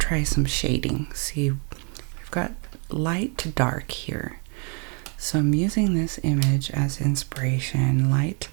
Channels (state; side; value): quieter; left; 37.7 dB